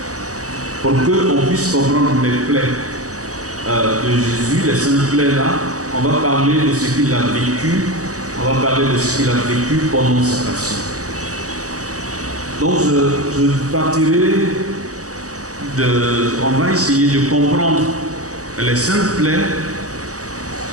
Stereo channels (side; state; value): left; late; 0.66 ms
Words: Pour qu'on puisse comprendre les plaies de Jésus, les saintes plaies là, on va parler de ce qu'il a vécu, on va parler de ce qu'il a vécu pendant sa passion. Donc je partirai on va essayer de comprendre les saintes plaies